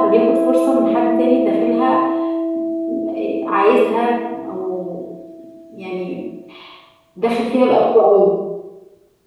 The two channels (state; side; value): identical; both; correlation 1.00